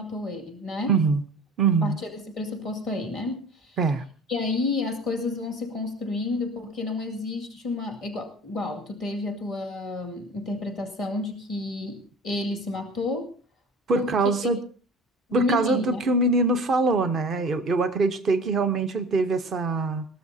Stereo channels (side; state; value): both; normal; correlation 0.41